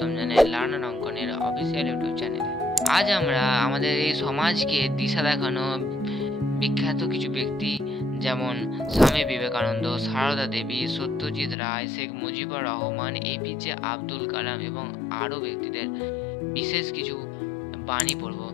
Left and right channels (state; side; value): drops out; right; at 11.6 s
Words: জানাই লার্নার অঙ্কনের অফিসিয়াল ইউটিউব চ্যানেলে। আজ আমরা আমাদের এই সমাজকে দিশা দেখানো বিখ্যাত কিছু ব্যক্তি যেমন স্বামী বিবেকানন্দ, সারদা দেবী, সত্যজিৎ রায়, শেখ মুজিবুর রহমান, এপিজে আব্দুল কালাম এবং আরও ব্যক্তিদের বিশেষ কিছু বাণী পড়ব।